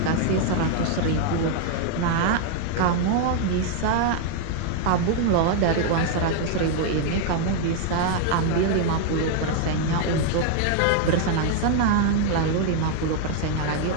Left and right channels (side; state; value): both; different; correlation 0.00